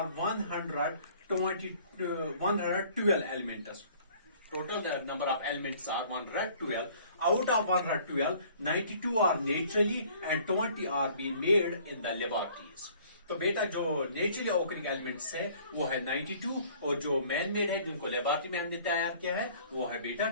112 elements. Total the number of elements are 112. Out of 112, 92 are naturally and 20 are being made in the laboratories. तो बेटा जो नेचुरली ऑकरिंग एलिमेंट्स है वो है 92 और जो man made है जिनको लेबोरेटरी में हमने तैयार किया है वो है बेटा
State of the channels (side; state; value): both; inverted; correlation -0.55